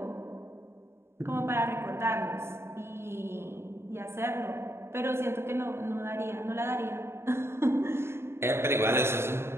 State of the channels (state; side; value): late; left; 0.12 ms